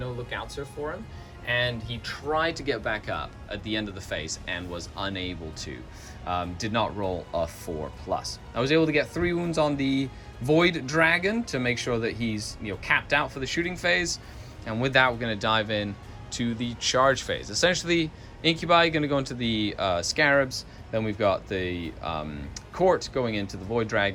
lookout for him, and he tried to get back up at the end of the phase and was unable to. Did not roll a 4+. I was able to get 3 wounds on the Void Dragon to make sure that he's capped out for the shooting phase, and with that we're going to dive in to the charge phase. Essentially, Incubi going to go into the Scarabs, then we've got the Court going into the Void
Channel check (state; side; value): identical; both; correlation 1.00